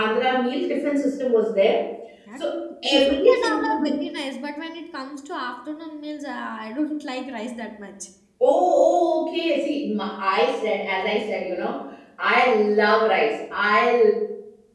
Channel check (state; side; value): identical; both; correlation 1.00